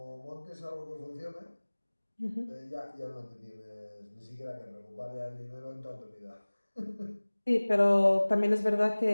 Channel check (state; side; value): inverted; both; correlation -1.00